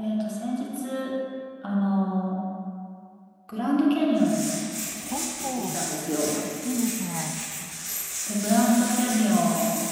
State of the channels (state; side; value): identical; both; correlation 1.00